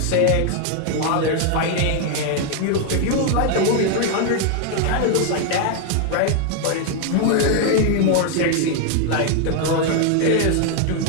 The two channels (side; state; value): both; different; correlation 0.00